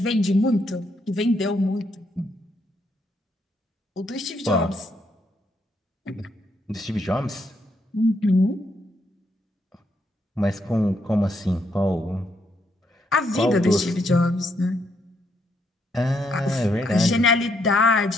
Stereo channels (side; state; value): both; normal; correlation 0.75